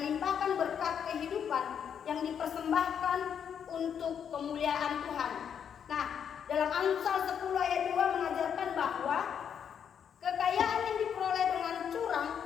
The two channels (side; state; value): right; quieter; 8.0 dB